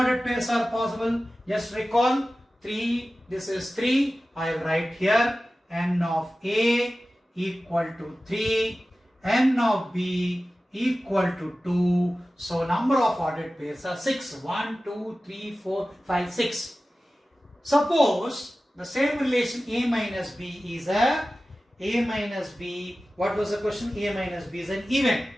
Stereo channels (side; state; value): both; normal; correlation 0.96